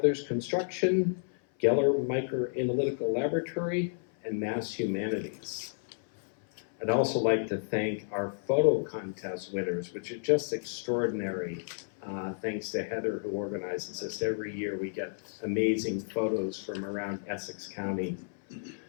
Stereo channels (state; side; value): silent; right; 57 dB below the other